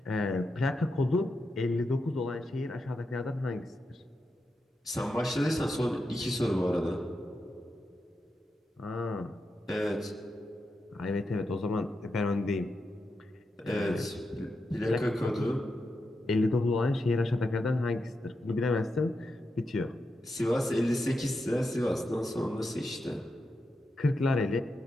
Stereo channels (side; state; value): both; normal; correlation 0.87